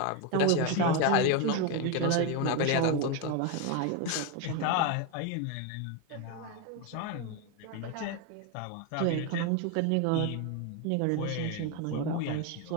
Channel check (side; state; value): both; different; correlation 0.02